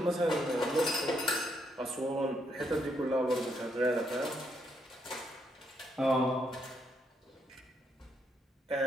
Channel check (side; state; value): both; normal; correlation 0.76